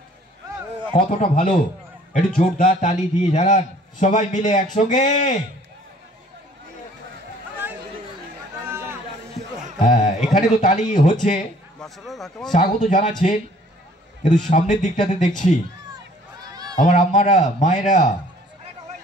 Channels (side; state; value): both; normal; correlation 0.56